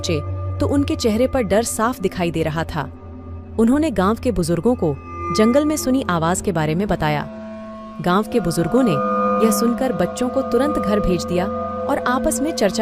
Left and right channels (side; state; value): both; identical; correlation 1.00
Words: तो उनके चेहरे पर डर साफ दिखाई दे रहा था। उन्होंने गांव के बुजुर्गों को जंगल में सुनी आवाज के बारे में बताया। गांव के बुजुर्गों ने यह सुनकर बच्चों को तुरंत घर भेज दिया और आपस में